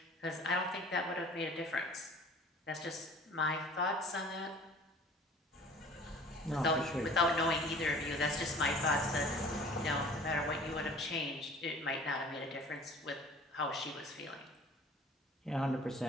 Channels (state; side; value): normal; both; correlation 0.47